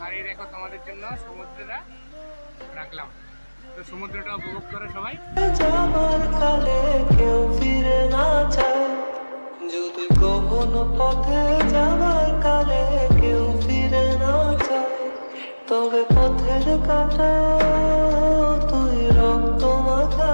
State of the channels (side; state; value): both; inverted; correlation -1.00